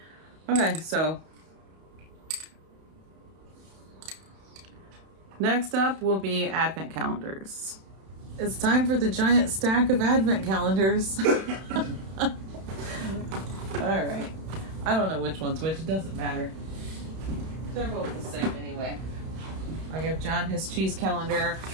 Okay, so next up will be advent calendars. It's time for the giant stack of advent calendars. All right. I don't know which one's which. It doesn't matter. They're both the same anyway. I give John his cheese calendar.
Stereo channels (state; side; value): late; left; 31 ms